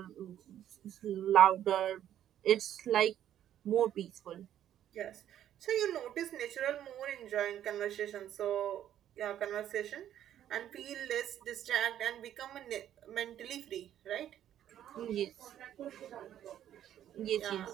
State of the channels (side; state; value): left; quieter; 11.1 dB